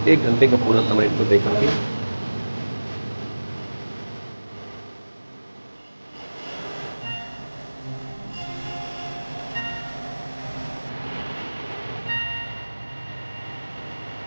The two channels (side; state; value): both; inverted; correlation -1.00